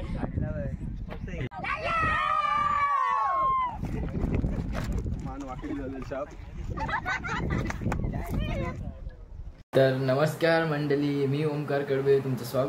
तर नमस्कार मंडळी, मी ओमकार कडवे तुमचं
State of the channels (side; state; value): both; identical; correlation 1.00